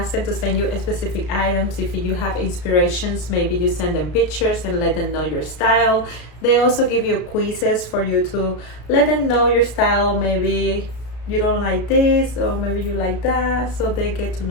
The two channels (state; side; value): late; right; 33 ms